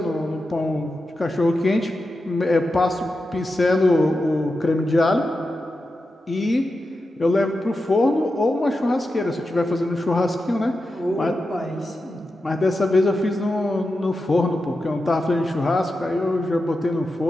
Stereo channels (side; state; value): both; normal; correlation 0.90